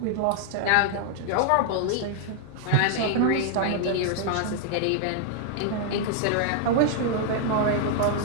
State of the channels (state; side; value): different; both; correlation 0.00